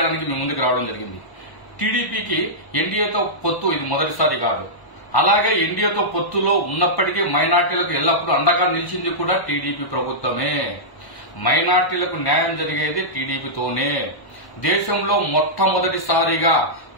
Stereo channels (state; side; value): late; right; 1.1 ms